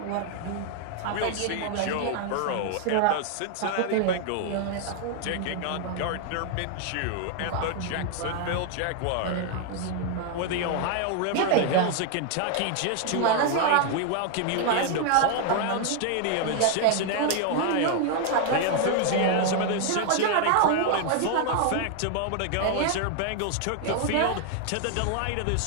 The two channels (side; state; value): both; different; correlation 0.00